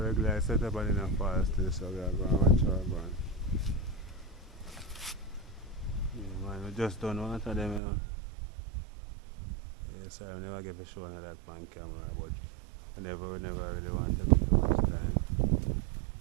setup and in a fall still, so we are going to watch our going. Yeah, man, we just don't water them, you know. Yeah, sorry, I never get a show on that on camera, but we never really want to take up too much time.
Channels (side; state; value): left; drops out; at 7.8 s